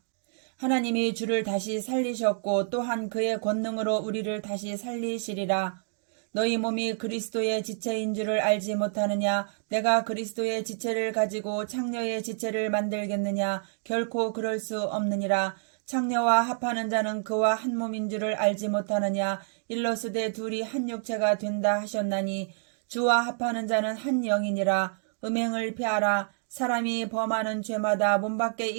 하나님이 주를 다시 살리셨고 또한 그의 권능으로 우리를 다시 살리시리라. 너희 몸이 그리스도의 지체인 줄을 알지 못하느냐. 내가 그리스도의 지체를 가지고 창녀의 지체를 만들겠느냐. 결코 그럴 수 없느니라. 창녀와 합하는 자는 그와 한 몸인 줄을 알지 못하느냐. 일러스되 둘이 한 육체가 된다 하셨나니 주와 합하는 자는 한 영이니라. 음행을 피하라. 사람이 범하는 죄마다 몸 밖에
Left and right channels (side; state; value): left; silent; digital silence